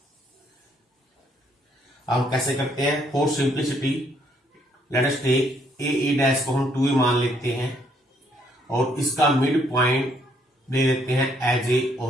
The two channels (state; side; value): normal; both; correlation 0.69